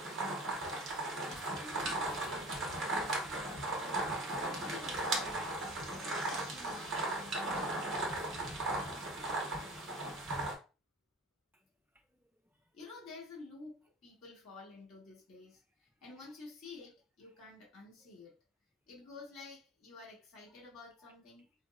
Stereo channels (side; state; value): both; normal; correlation 0.39